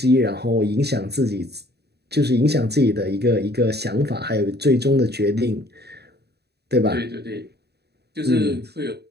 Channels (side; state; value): left; late; 0.48 ms